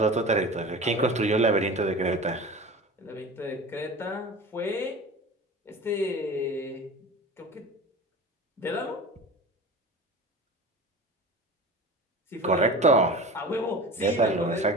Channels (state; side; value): normal; both; correlation 0.34